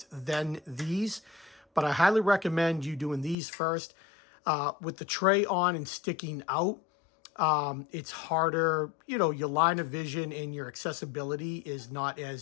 then these, but I highly recommend you doing these first. With the tray on and sticking out, it's harder, you know, your line of vision and your accessibility is not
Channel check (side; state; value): right; drops out; at 3.4 s